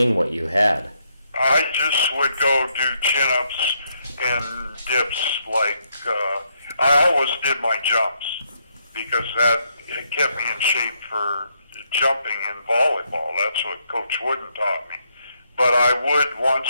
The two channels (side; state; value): both; inverted; correlation -0.76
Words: what you had? I just would go do chin-ups and dips. I always did my jumps because it kept me in shape for jumping in volleyball. That's what Coach Wooden taught me. But I would